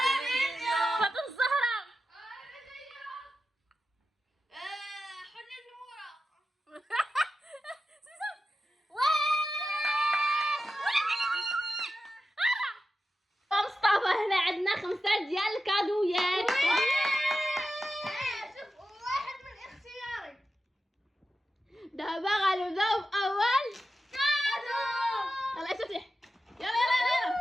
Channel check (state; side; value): normal; both; correlation 0.91